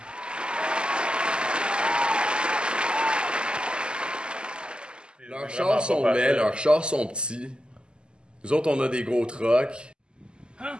Leurs chars sont laids, leurs chars sont petits. Nous autres, on a des gros trucks. Hein?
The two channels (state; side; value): late; left; 0.049 ms